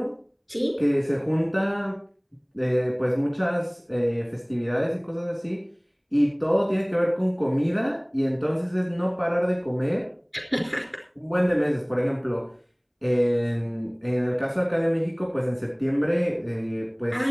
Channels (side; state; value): both; identical; correlation 1.00